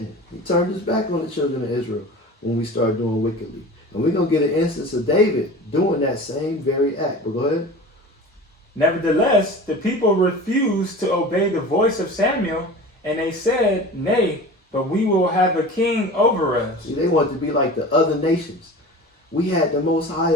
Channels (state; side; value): normal; both; correlation 0.36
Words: He turned his back on the children of Israel when we started doing wickedly. And we're going to get an instance of David doing that same very act. But go ahead. Nevertheless, the people refused to obey the voice of Samuel, and they said, Nay, but we will have a king over us. See, they wanted to be like the other nations. We had the Most High